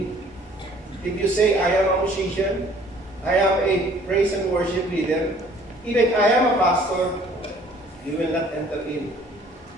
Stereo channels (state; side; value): normal; both; correlation 0.55